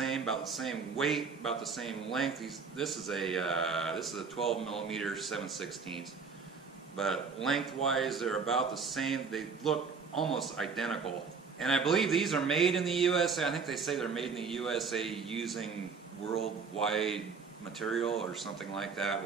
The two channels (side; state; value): left; quieter; 5.3 dB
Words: weight, about the same length. This is a 12 millimeter 7/16, but lengthwise they're about the same. They look almost identical. And I believe these are made in the USA. I think they say they're made in the USA using worldwide material or something like that,